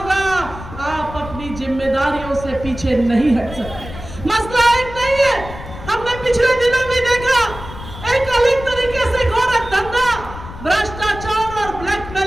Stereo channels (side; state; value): left; noise; rumble, 13 dB below the sound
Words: आप अपनी जिम्मेदारियों से पीछे नहीं हट सकते। मसला एक नहीं है, हमने पिछले दिनों में देखा एक अलग तरीके से गोरख धंधा, भ्रष्टाचार और